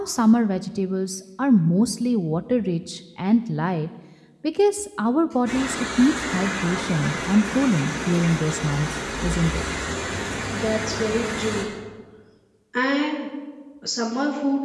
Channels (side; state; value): both; identical; correlation 1.00